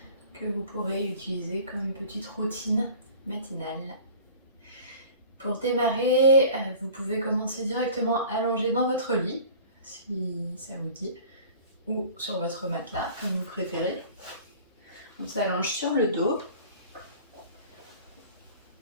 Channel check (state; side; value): inverted; both; correlation -0.44